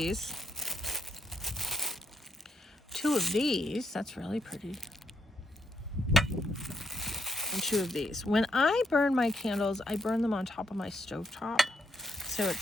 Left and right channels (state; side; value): normal; both; correlation 0.78